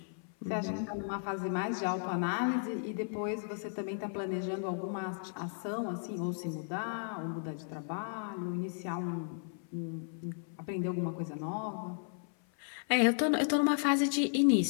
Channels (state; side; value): silent; right; 55 dB below the other